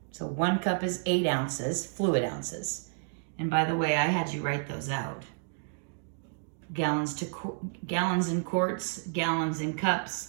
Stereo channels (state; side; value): silent; left; digital silence